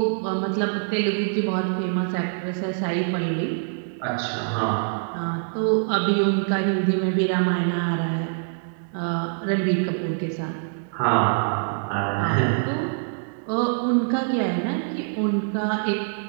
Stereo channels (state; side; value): silent; left; digital silence